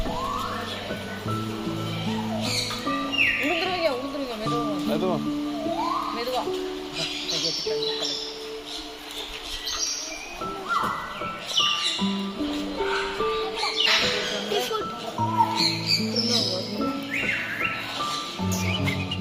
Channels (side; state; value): both; identical; correlation 1.00